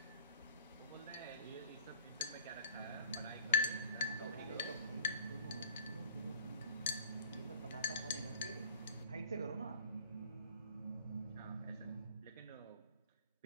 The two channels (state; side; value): inverted; both; correlation -0.50